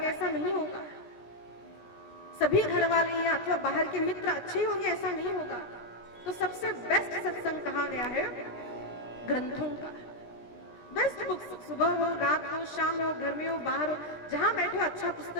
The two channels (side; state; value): right; late; 17 ms